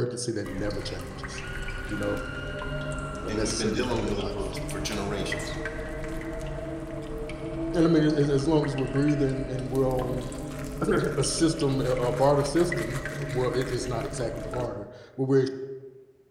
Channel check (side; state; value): both; identical; correlation 1.00